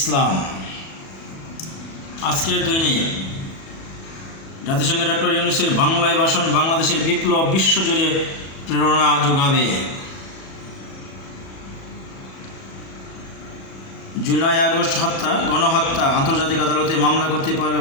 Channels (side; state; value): right; late; 37 ms